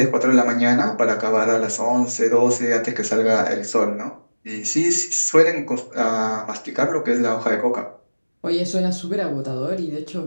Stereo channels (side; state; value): both; inverted; correlation -1.00